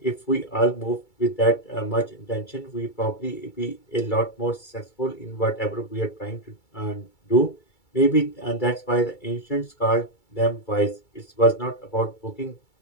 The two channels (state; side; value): late; right; 2.3 ms